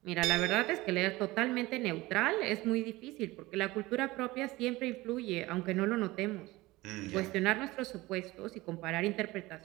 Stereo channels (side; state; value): left; quieter; 19.9 dB